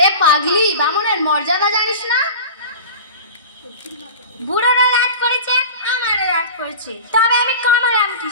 পাগলি, বামনের মর্যাদা জানিস না? বুড়োরা রাগ করেছে, আমারও রাগ করেছে, তবে আমি কামড়াম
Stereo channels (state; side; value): inverted; both; correlation -0.34